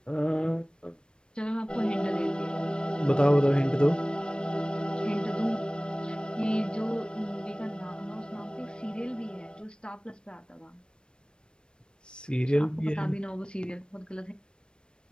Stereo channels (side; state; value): right; late; 0.053 ms